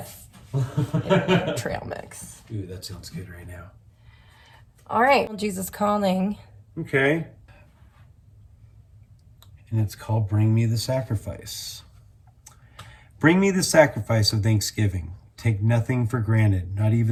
Trail mix. Ooh, that sounds good right now. All right. Jesus Calling. Okay. And it's called Bring Me the Sacrifice. Bring me the sacrifice of thanksgiving. Take nothing for granted, not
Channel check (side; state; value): both; identical; correlation 1.00